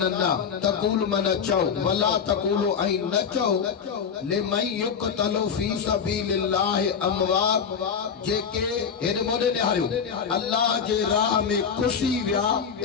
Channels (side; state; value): right; quieter; 6.8 dB